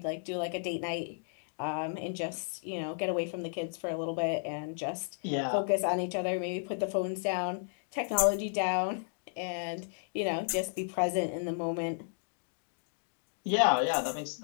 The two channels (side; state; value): right; silent; digital silence